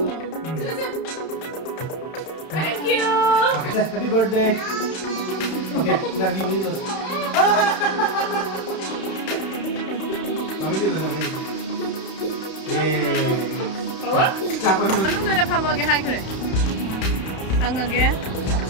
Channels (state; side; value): late; right; 31 ms